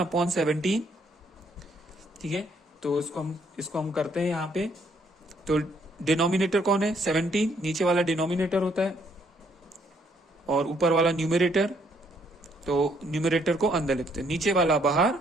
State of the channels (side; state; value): both; normal; correlation 0.68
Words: ठीक है, तो इसको हम करते हैं यहाँ पे। तो डिनोमिनेटर कौन है, 17, नीचे वाला डिनोमिनेटर होता है और ऊपर वाला न्यूमरेटर। तो न्यूमरेटर को अंदर लिखते हैं, नीचे वाला बाहर